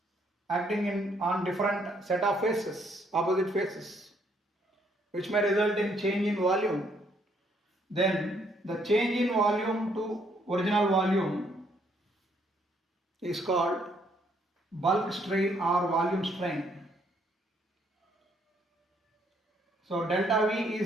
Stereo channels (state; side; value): normal; both; correlation 0.69